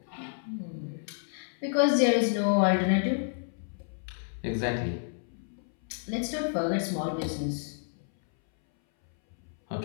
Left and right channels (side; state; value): right; silent; 58 dB below the other